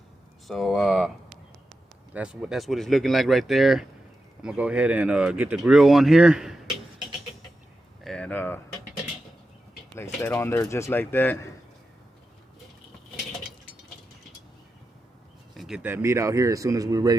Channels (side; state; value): both; normal; correlation 0.90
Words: So that's what it's looking like right there. I'm gonna go ahead and get the grill on here and place that on there just like that. Get that meat out here as soon as we're